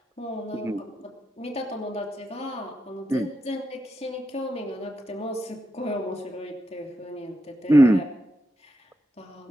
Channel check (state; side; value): normal; both; correlation 0.85